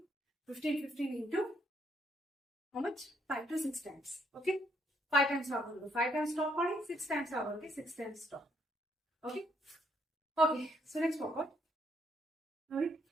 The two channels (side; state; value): both; normal; correlation 0.71